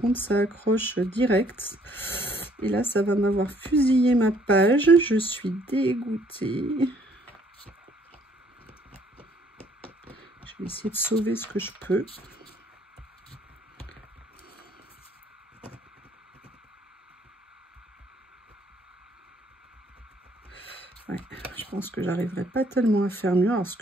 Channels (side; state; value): both; normal; correlation 0.63